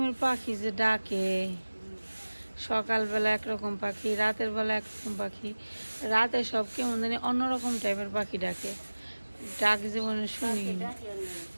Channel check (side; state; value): both; inverted; correlation -1.00